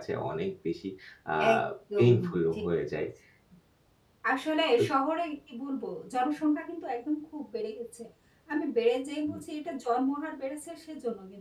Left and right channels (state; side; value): identical; both; correlation 1.00